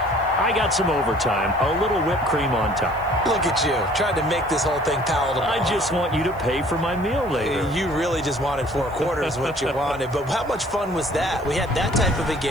got some overtime, a little whipped cream on top. Look at you, trying to make this whole thing palatable. I just want you to pay for my meal later. You really just wanted 4 quarters, what you wanted. But how much fun was that? We had that type of a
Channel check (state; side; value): noise; left; hiss, 27 dB below the sound